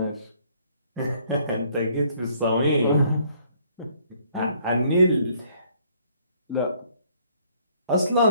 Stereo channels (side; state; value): both; inverted; correlation -0.63